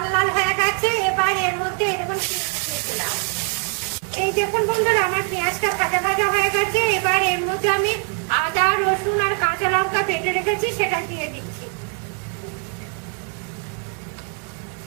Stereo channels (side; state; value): left; quieter; 37.5 dB